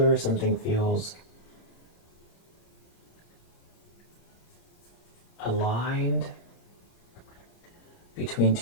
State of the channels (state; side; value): late; right; 29 ms